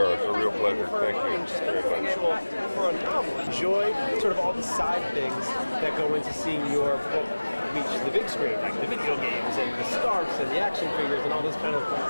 It's a real pleasure. Thank you. For a novel, enjoy sort of all the side things that go into seeing your book reach the big screen, like the video games and the scarves and the action figures and all those kind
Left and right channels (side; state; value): both; inverted; correlation -1.00